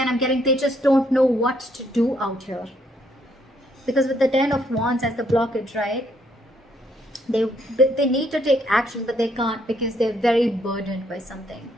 I'm getting they just don't know what to do out here. Because with the Ten of Wands as the blockage, right? They need to take action, but they can't because they're very burdened by something.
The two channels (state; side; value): normal; both; correlation 0.71